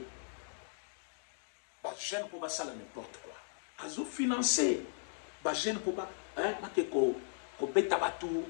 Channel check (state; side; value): silent; right; digital silence